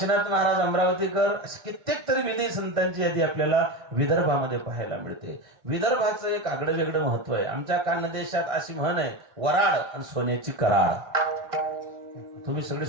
महाराज अमरावतीकर, असे कित्येक तरी विधी संतांची यादी आपल्याला विदर्भामध्ये पाहायला मिळते. विदर्भाचं एक आगळं वेगळं महत्व आहे. आमच्या खानदेशात अशी म्हण आहे, वराड आणि सोन्याची कराड. तुम्ही सगळे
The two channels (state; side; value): late; left; 1.5 ms